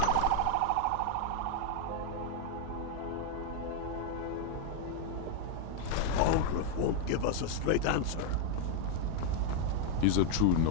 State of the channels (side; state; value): both; different; correlation 0.01